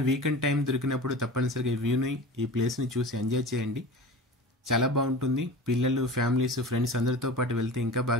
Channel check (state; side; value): normal; both; correlation 0.34